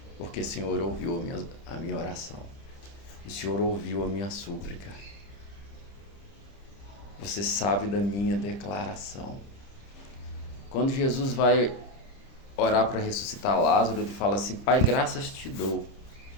Porque o Senhor ouviu a minha oração. O Senhor ouviu a minha súplica. Você sabe da minha declaração. Quando Jesus vai orar para ressuscitar Lázaro, ele fala assim, Pai, graças te dou,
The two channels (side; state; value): right; late; 30 ms